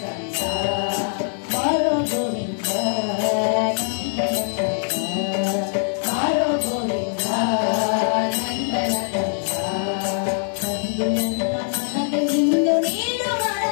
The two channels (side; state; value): right; silent; 60 dB below the other